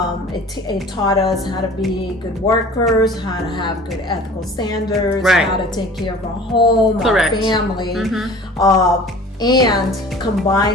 taught us how to be good workers, how to have good ethical standards, how to take care of our home, our family. And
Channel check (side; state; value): both; normal; correlation 0.44